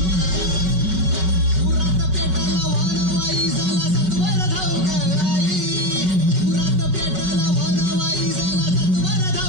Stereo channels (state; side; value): late; left; 5.3 ms